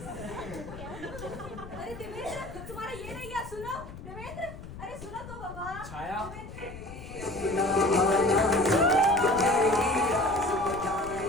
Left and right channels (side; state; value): left; noise; rumble, 13 dB below the sound